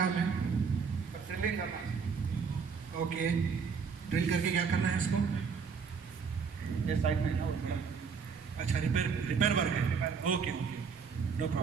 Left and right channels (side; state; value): left; quieter; 5.9 dB